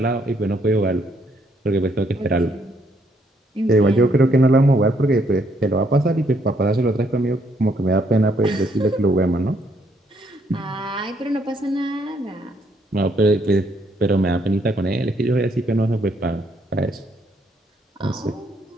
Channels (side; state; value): both; normal; correlation 0.71